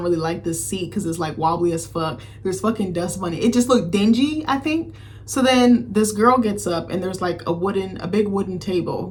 really like this seat because it's like wobbly as fuck. There's fucking dust bunny. It just looked dingy, I think. So then this girl gets up and there's like a big wooden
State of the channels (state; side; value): identical; both; correlation 1.00